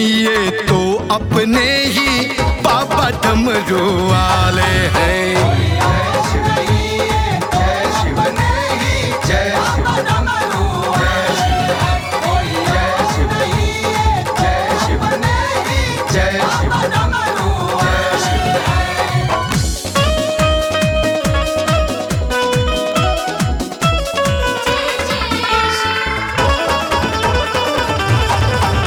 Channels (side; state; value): both; identical; correlation 1.00